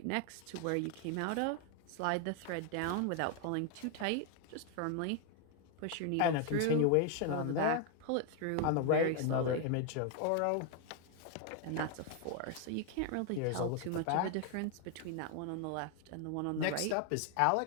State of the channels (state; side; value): different; both; correlation 0.01